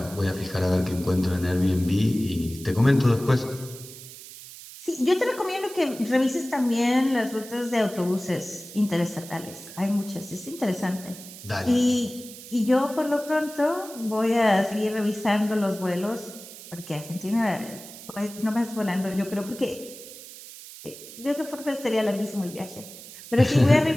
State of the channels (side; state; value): right; noise; hiss, 15 dB below the sound